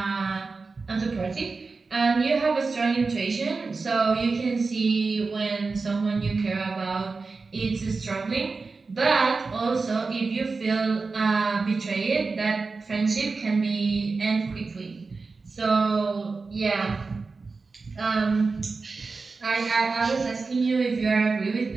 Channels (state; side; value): quieter; left; 4.2 dB